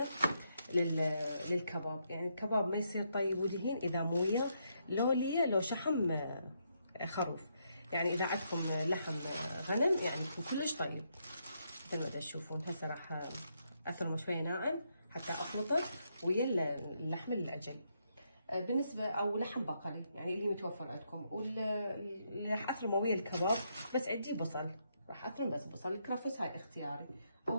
للكباب. يعني الكباب ما يصير طيب ودهين اذا مو وياه لو شحم خروف. يعني اذا عندكم لحم غنم يعني يكون كلش طيب مثل ما تشوفون. هسه راح اثرمه شويه ناعم حتى اخلطه ويا اللحم العجل. بالنسبه او لحم بقري يعني اللي متوفر عندكم، واللي راح اثرمه ويا الكباب. بس عندي بصل، راح اثرم بس بصل. الكرفس هاي اختياري،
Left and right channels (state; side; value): inverted; both; correlation -0.77